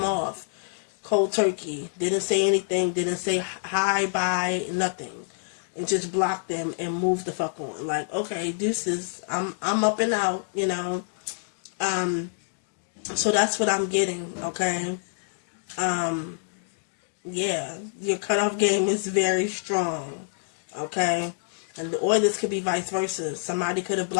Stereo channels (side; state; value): right; silent; digital silence